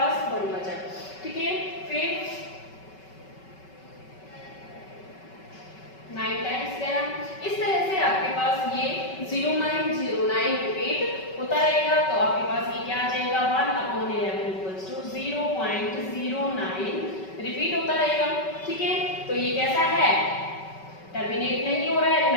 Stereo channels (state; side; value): late; right; 5.3 ms